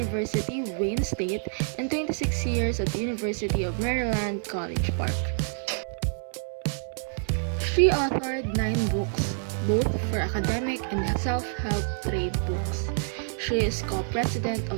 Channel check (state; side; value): silent; left; 60 dB below the other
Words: Wayne State, and 26 years at the University of Maryland, College Park. She authored 9 books, both for academic and self-help trade books. She is co-president